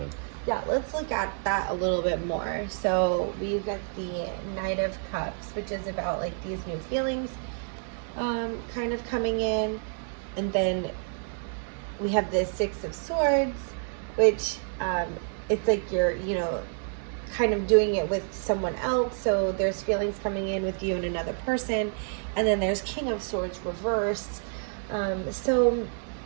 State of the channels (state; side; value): silent; left; 59 dB below the other